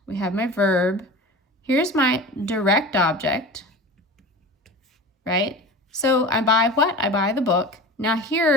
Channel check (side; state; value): both; normal; correlation 0.34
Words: we have my verb, here's my direct object, right? So I buy what? I buy the book. Now